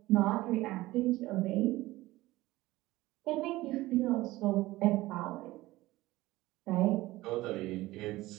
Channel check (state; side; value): quieter; left; 18.1 dB